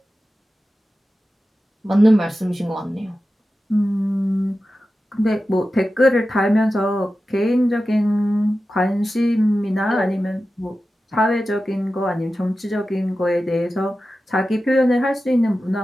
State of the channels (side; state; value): both; normal; correlation 0.93